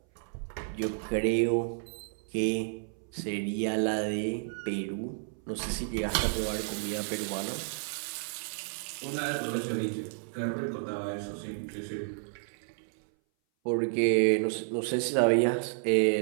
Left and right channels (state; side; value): silent; left; 57 dB below the other